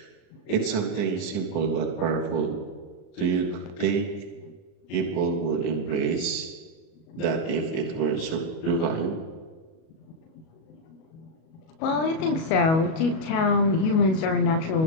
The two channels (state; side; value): late; right; 37 ms